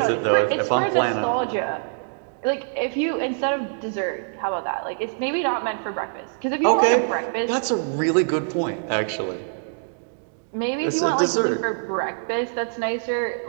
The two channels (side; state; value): left; silent; digital silence